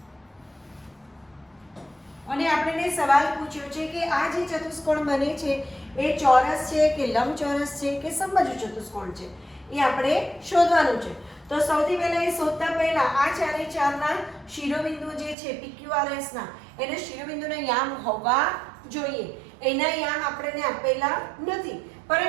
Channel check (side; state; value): left; drops out; at 15.4 s